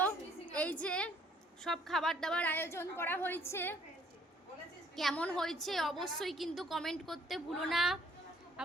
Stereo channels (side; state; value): both; normal; correlation 0.61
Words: এই যে সব খাবার দাবার আয়োজন করা হয়েছে। কেমন হয়েছে অবশ্যই কিন্তু কমেন্ট করতে ভুলো না